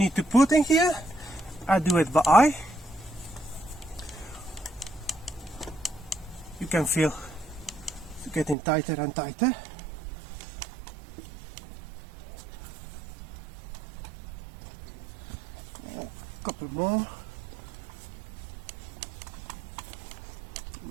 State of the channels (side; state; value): left; drops out; at 8.6 s